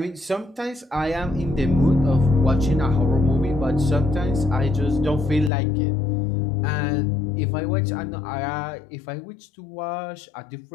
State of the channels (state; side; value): drops out; right; at 5.5 s